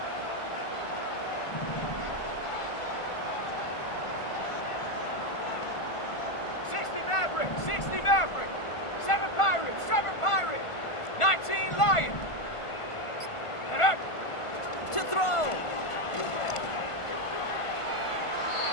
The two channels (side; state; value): right; late; 1.5 ms